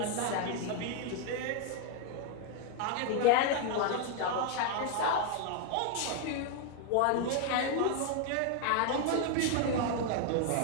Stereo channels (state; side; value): different; both; correlation 0.00